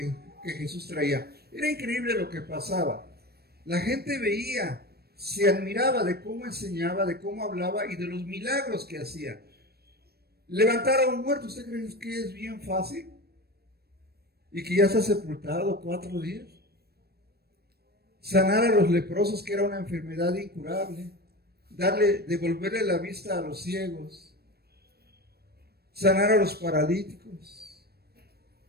Jesús traía. Era increíble lo que pasaba. La gente veía, se admiraba de cómo enseñaba, de cómo hablaba y de los milagros que hacía. Levantar a un muerto, ¿usted cree que es bien fácil? Y que ya está sepultado 4 días. Sanar a los leprosos, que era una enfermedad incurable. Devolverle la vista a los ciegos. Sanar a los paralíticos.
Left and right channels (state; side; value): late; left; 0.46 ms